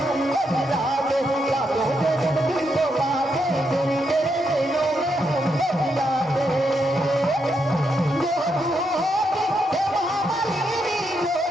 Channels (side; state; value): both; normal; correlation 0.80